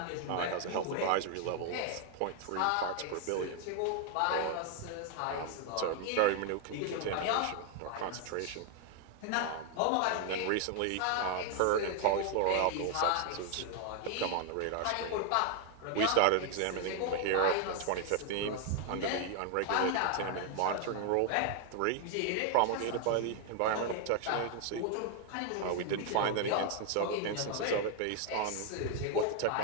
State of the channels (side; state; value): both; different; correlation 0.00